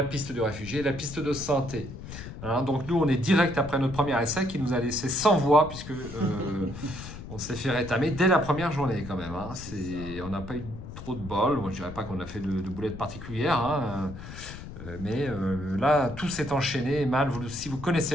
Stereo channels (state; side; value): noise; left; rumble, 12 dB below the sound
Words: piste de réfugiés, la piste de santé. Hein, donc nous, on est direct après notre premier essai qui nous a laissé sans voix puisque on s'est fait rétamer dès la première journée quand même. Hein. On n'a pas eu trop de bol. Moi, je dirais pas qu'on a fait de boulettes particulières. Hein. Mais là, tout s'est enchaîné mal. Si vous